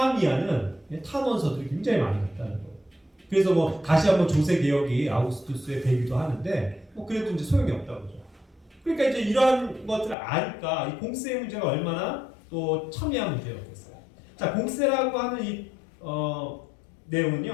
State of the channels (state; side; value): drops out; right; at 10.2 s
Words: 탄원서들이 굉장히 많이 났다는 거예요. 그래서 다시 한번 조세 개혁이 아우구스투스에 되기도 하는데, 그래도 이제 소용이 없다고 그러죠. 그러니까 이제 이러한 것들을 아니까 이 공세 문제가 얼마나 또 첨예한 문제였겠어요. 자, 공세라고 하는 이